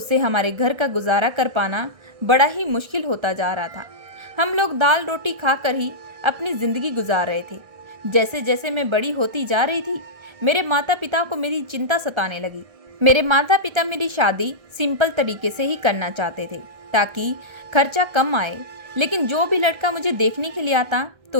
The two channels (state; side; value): late; left; 1.3 ms